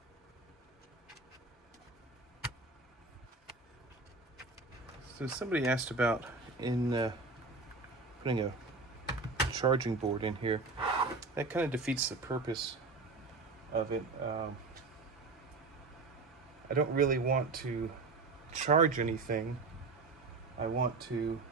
So somebody asked about in putting a charging board in here. That kind of defeats the purpose of it. I don't really want to charge anything. I want to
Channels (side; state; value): left; quieter; 3.9 dB